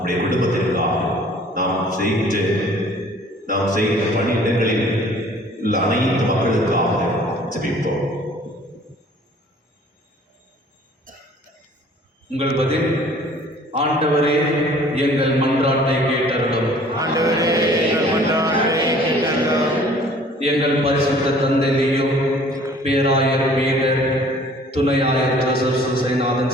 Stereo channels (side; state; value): both; normal; correlation 0.52